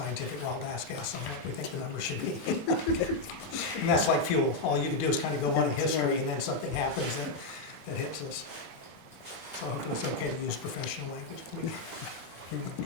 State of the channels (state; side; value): quieter; right; 3.2 dB